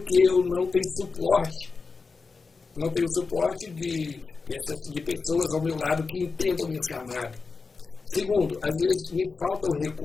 eu não tenho suporte. Não tenho suporte de pessoas ao meu lado que entendam o meu chamado. Segundo, às vezes me falta o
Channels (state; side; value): quieter; right; 4.5 dB